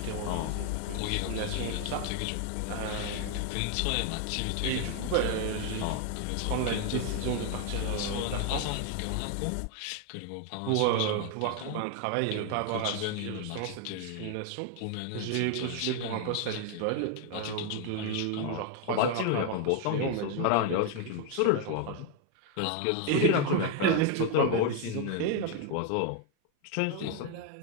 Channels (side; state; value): both; different; correlation 0.01